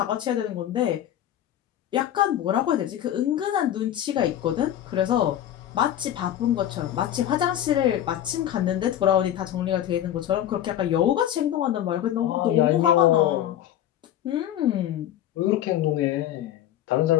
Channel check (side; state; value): right; quieter; 11.5 dB